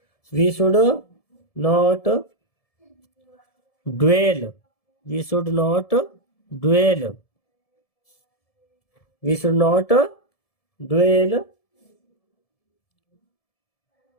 We should not dwell, we should not dwell, we should not dwell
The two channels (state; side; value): late; right; 1.7 ms